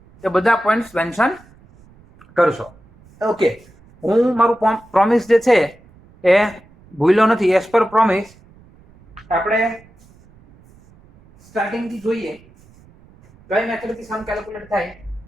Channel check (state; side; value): noise; right; rumble, 27 dB below the sound